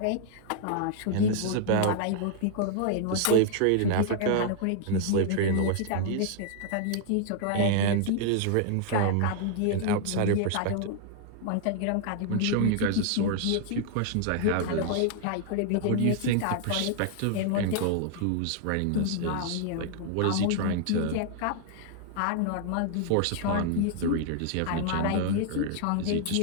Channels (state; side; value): different; both; correlation 0.00